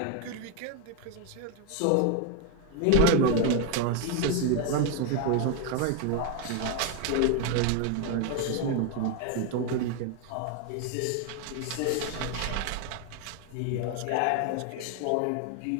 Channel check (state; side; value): different; both; correlation 0.01